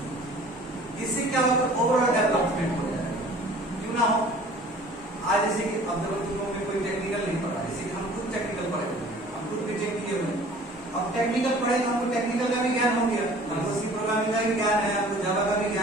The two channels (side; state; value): both; normal; correlation 0.48